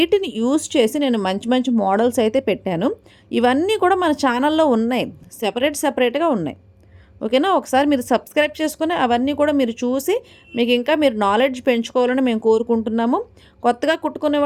యూజ్ చేసి నేను మంచి మంచి మోడల్స్ అయితే పెట్టాను. ఇవన్నీ కూడా మన ఛానల్‌లో ఉన్నాయి. సెపరేట్‌గా ఉన్నాయి. ఓకేనా? ఒకసారి మీరు సబ్స్క్రైబ్ చేసుకొని అవన్నీ కూడా మీరు చూసి మీకు ఇంకా మీరు నాలెడ్జ్ పెంచుకోవాలని మేము కోరుకుంటున్నాము. కొత్తగా కుట్టుకునే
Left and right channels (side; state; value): both; identical; correlation 1.00